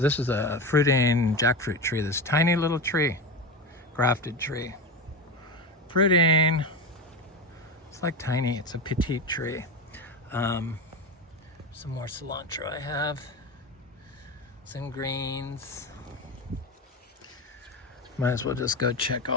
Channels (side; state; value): both; normal; correlation 0.21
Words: is a fruiting jackfruit tree. This tiny little tree, grafted tree. Fruiting. It's like tiny. It's a petite tree. Some more cilantro I have. Some greens. Might as well just go check